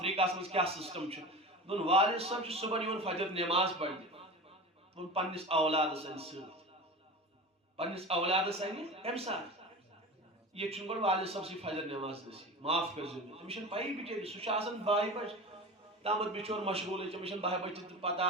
مز کیا سسٹم دون والد صاحب صبح فجر نماز پڑھنے پنس اولادس ان پنس اولادس ان کم سات یہ گو والد صاحب سی فجر نماز نصیب معاف کر تمس پی بچر سہ باہ بج تامت بچور مشغول تمس باہ بج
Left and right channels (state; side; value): normal; both; correlation 0.31